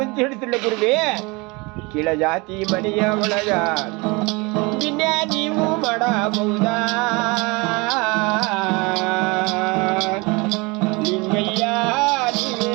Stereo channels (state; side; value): quieter; left; 26.5 dB